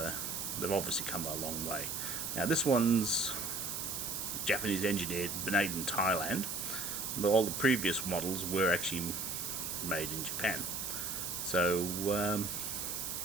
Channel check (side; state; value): right; noise; hiss, 3 dB below the sound